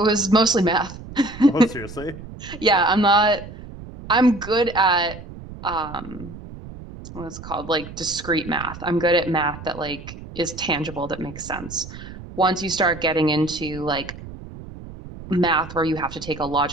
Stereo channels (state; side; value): noise; right; rumble, 14 dB below the sound